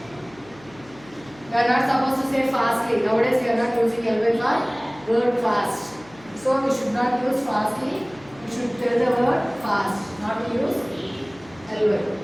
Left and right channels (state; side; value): noise; left; hum, 23 dB below the sound